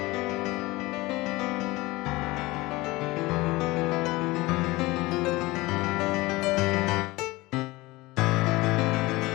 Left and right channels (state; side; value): quieter; right; 21.0 dB